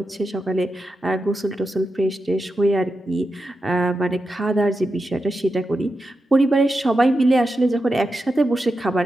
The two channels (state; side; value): normal; both; correlation 0.89